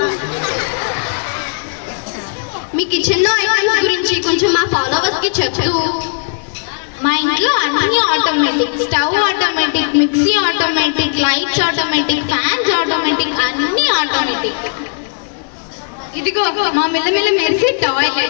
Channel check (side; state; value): right; silent; 56 dB below the other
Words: మీ కిచెన్ లో ఐటమ్స్ గురించి కొంచెం మా ఫాలోవర్స్ కి చెప్తూ. మా ఇంట్లో అన్ని automatic, stove automatic, mixie automatic, lights automatic, fans automatic, అన్ని ఆటోమేటిక్. ఇదిగో మా మిల్లమిల్ల మెరిసే